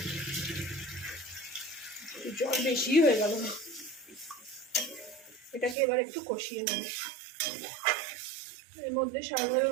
জল বেশি হয়ে গেল, এটাকে এবার একটু কষিয়ে নেব। এর মধ্যে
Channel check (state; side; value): drops out; left; at 5.8 s